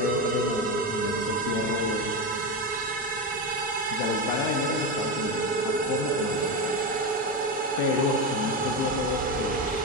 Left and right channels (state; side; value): normal; both; correlation 0.14